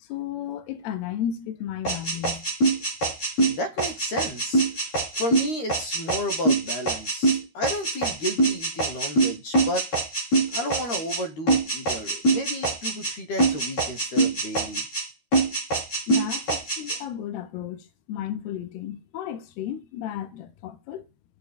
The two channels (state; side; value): late; right; 13 ms